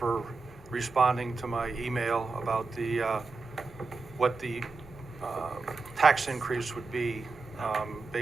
responding to my email about what the tax increase would be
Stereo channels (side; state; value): left; quieter; 4.1 dB